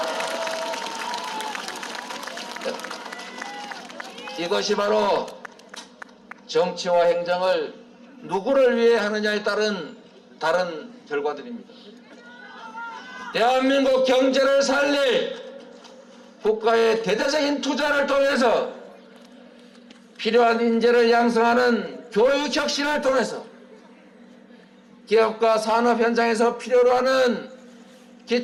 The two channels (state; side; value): identical; both; correlation 1.00